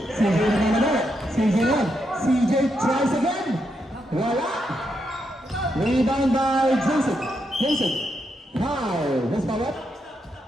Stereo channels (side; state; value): both; normal; correlation 0.81